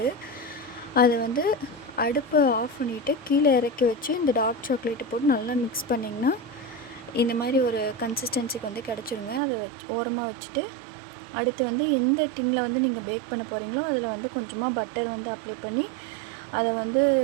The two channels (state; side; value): drops out; left; at 9.4 s